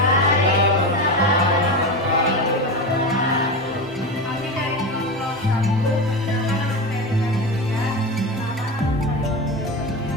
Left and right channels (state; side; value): normal; both; correlation 0.21